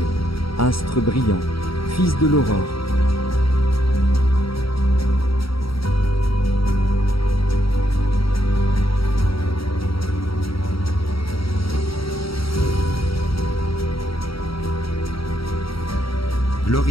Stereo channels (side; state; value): right; late; 0.75 ms